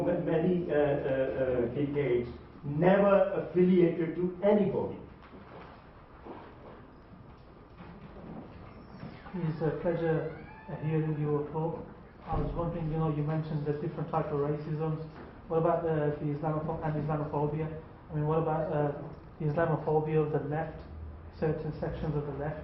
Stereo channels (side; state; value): both; identical; correlation 1.00